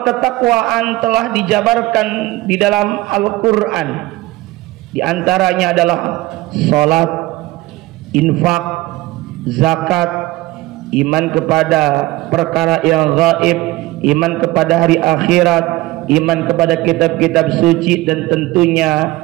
ketakwaan telah dijabarkan di dalam Al-Quran. Di antaranya adalah salat, infak, zakat, iman kepada perkara yang gaib, iman kepada hari akhirat, iman kepada kitab-kitab suci, dan tentunya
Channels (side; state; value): left; quieter; 18.8 dB